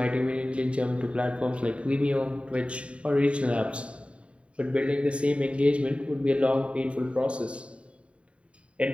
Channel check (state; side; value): late; left; 0.061 ms